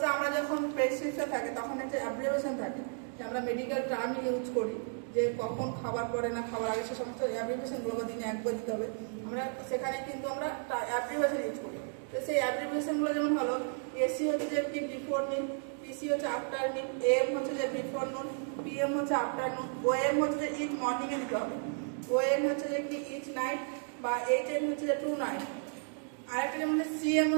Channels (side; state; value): left; silent; 56 dB below the other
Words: আমরা যখন প্রেসক্রিপশন থাকে তখন একটা অ্যাব্রিভিয়েশন থাকে যে আমরা মেডিকেল টার্ম ইউজ করি, যে কখন খাবার পরে না খাবার আগে সে সমস্ত অ্যাব্রিভিয়েশনগুলো দিনে একবার দিতে হবে। আমরা সেখানে কিন্তু আমরা অ্যাব্রিভিয়েশন ইউজ করি। তো সেই অ্যাব্রিভিয়েশনগুলো যেমন হলো এসি হচ্ছে যে কি বিফোর মিল, পিসি হচ্ছে আফটার মিল, এম হচ্ছে যে বিফোর নুন, পিএম হচ্ছে আফটারনুন, ওএম হচ্ছে যে ইচ মর্নিংয়ে দিতে হবে, ওএন হচ্ছে যে কি ইচ নাইট বা এইচএন হচ্ছে যে টু নাইট। আরেকটা যেমন সিএম